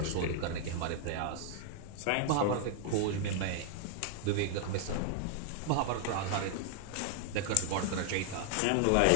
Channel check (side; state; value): both; different; correlation 0.00